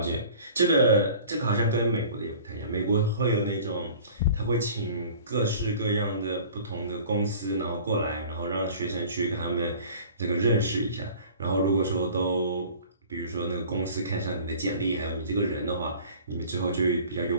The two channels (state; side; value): inverted; both; correlation -0.45